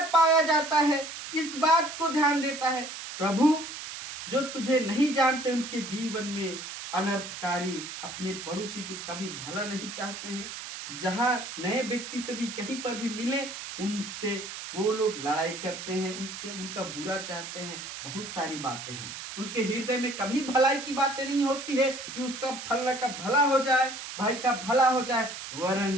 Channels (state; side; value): noise; right; hiss, 9 dB below the sound